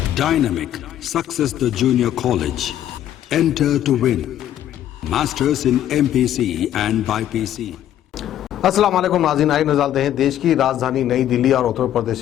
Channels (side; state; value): right; quieter; 11.6 dB